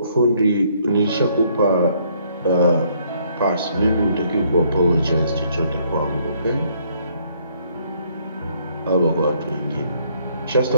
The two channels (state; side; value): inverted; both; correlation -0.66